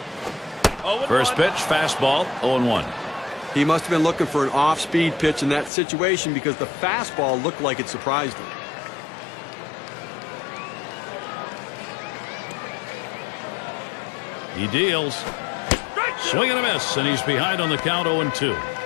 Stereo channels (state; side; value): drops out; right; at 5.7 s